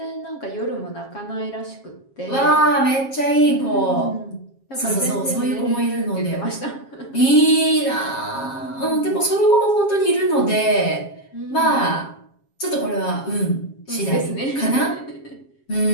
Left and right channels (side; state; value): right; late; 7.4 ms